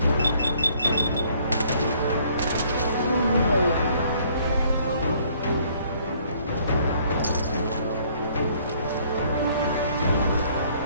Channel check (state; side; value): inverted; both; correlation -0.62